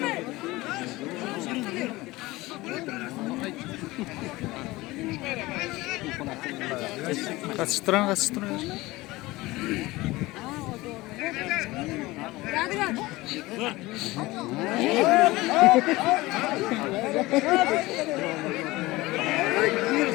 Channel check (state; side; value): quieter; right; 20.0 dB